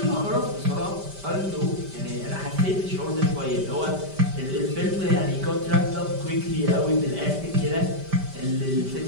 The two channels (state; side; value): late; left; 5.1 ms